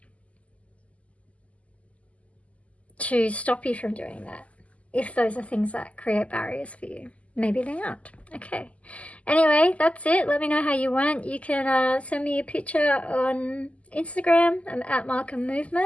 stop you from doing that. If those are things that create barriers for you. Maybe they aren't. Okay. Anyway, that's it. Let me know how you went. You can send me a picture on Instagram. I'm at Markham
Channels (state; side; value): late; right; 0.067 ms